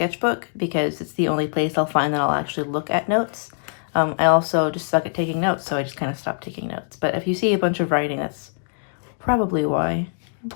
because it's the only place I'll find that I'll actually look at notes. I also just suck at taking notes, so I just kind of stopped taking notes. But if you see a bunch of writing, that's probably why.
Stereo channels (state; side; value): silent; right; digital silence